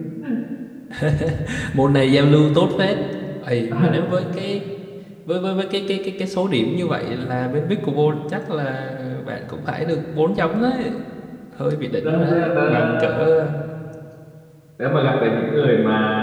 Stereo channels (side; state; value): both; identical; correlation 1.00